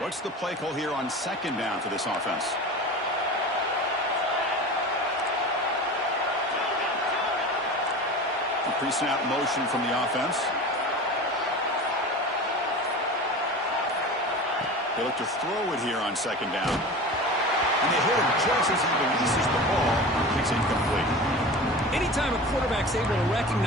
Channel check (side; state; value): both; normal; correlation 0.33